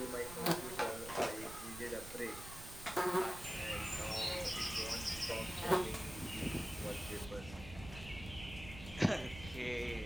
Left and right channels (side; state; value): right; noise; rumble, 12 dB below the sound